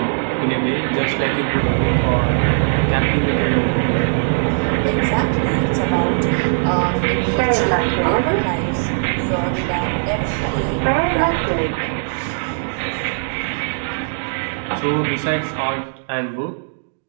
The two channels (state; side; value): silent; left; digital silence